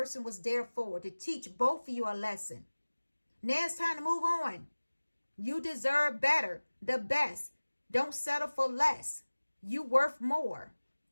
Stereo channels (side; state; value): both; inverted; correlation -1.00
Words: was there for. To teach both of you a lesson. Now it's time to move on. You deserve better. The best. Don't settle for less. You worth more.